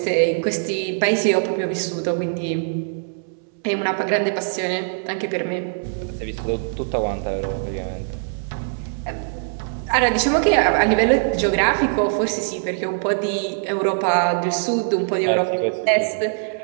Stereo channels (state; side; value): silent; left; 64 dB below the other